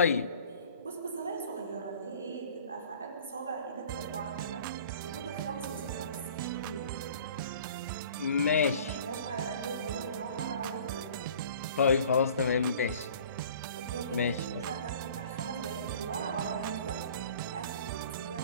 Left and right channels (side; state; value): both; inverted; correlation -0.48